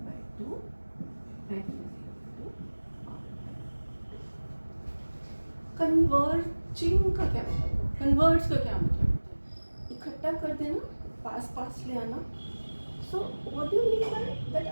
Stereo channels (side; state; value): both; inverted; correlation -1.00